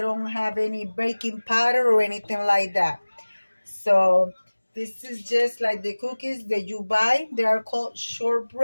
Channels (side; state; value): both; inverted; correlation -1.00